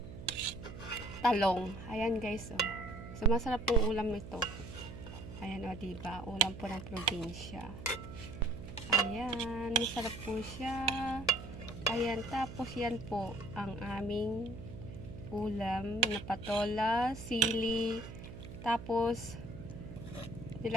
talong. Ayan guys. Oh. So masarap pong ulam ito. Ayan o, diba? Ulam po ng probinsya. Ayan, masarap po siya. Ayan, tapos yan po ang aming ulam na patola, sili. Tapos,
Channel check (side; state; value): right; noise; hum, 12 dB below the sound